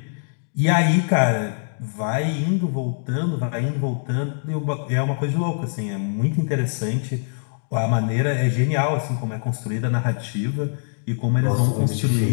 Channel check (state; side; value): silent; right; digital silence